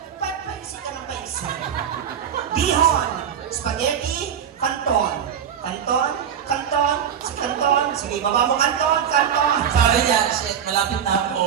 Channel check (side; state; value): left; quieter; 8.5 dB